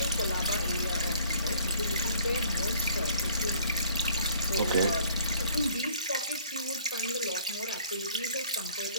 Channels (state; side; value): inverted; both; correlation -0.57